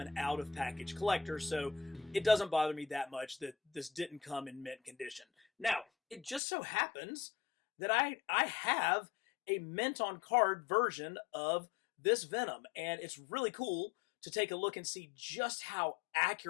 out-of-package collector, so it doesn't bother me that much that this didn't come in mint condition. Now, it just so happens that I have a mint on card version of this Venom, and it's really cool to take a look and see just how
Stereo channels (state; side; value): drops out; right; at 6.4 s